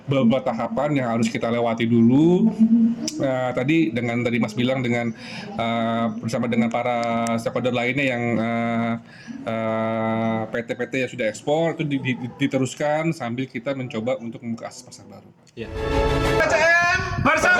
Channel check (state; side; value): identical; both; correlation 1.00